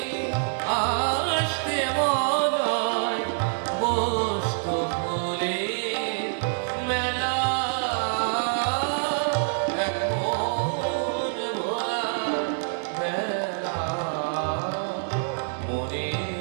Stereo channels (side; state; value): left; silent; digital silence